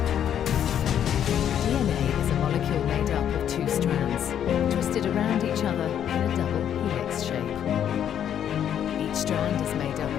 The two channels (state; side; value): quieter; right; 9.6 dB